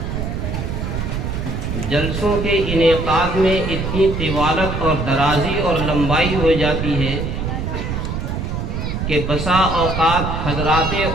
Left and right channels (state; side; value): noise; right; rumble, 3 dB below the sound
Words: جلسوں کے انعقاد میں اتنی طوالت اور درازی اور لمبائی ہو جاتی ہے کہ بسا اوقات حضرات